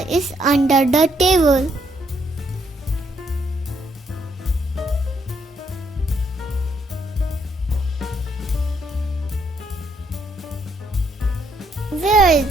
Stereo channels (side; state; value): both; normal; correlation 0.72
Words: is under the table. Where is